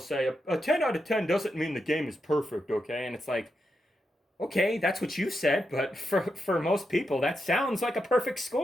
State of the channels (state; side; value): normal; both; correlation 0.85